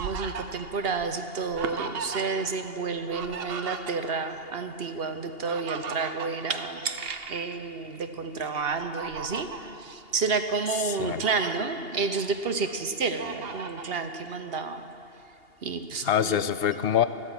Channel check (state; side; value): late; left; 2.8 ms